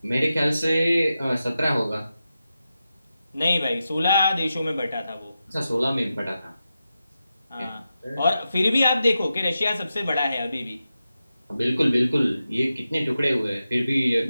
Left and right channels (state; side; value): inverted; both; correlation -0.90